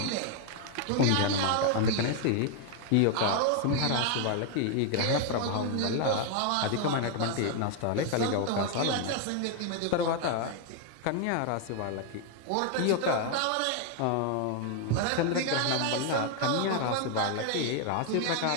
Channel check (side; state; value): both; different; correlation 0.00